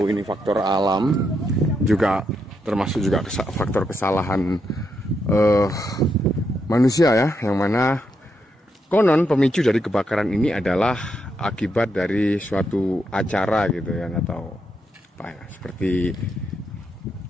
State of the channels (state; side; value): normal; both; correlation 0.81